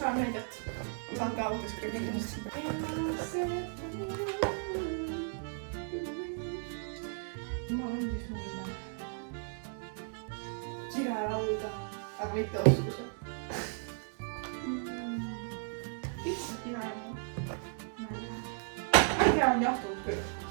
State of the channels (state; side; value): silent; left; 54 dB below the other